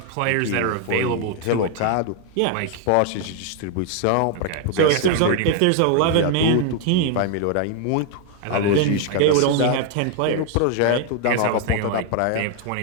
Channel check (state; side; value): different; both; correlation 0.00